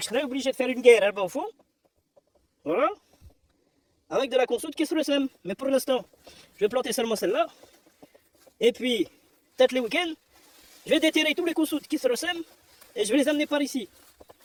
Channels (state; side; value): identical; both; correlation 1.00